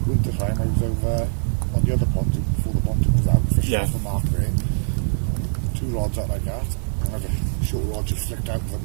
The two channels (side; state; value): left; silent; digital silence